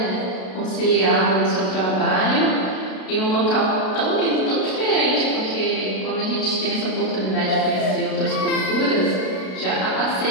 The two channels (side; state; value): right; late; 32 ms